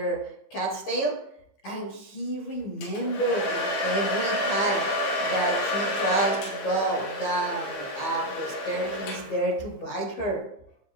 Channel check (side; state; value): right; late; 15 ms